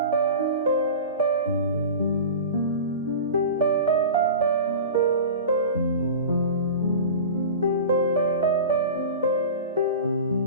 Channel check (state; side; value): inverted; both; correlation -0.34